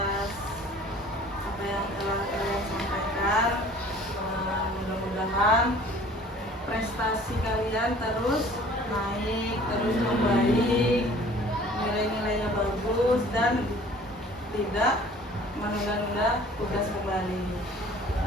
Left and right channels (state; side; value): normal; both; correlation 0.50